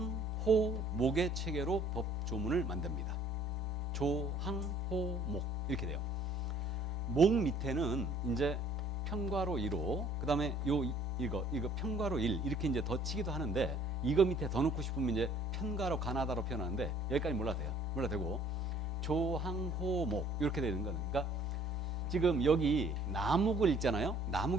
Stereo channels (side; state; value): both; normal; correlation 0.57